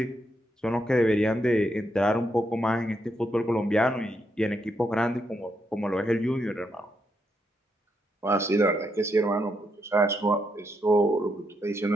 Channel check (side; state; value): both; normal; correlation 0.79